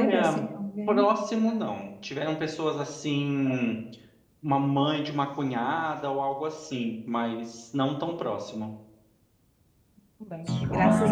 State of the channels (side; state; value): both; identical; correlation 1.00